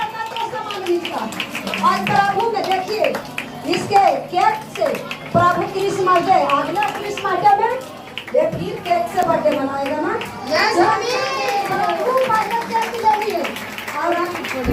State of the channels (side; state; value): both; identical; correlation 1.00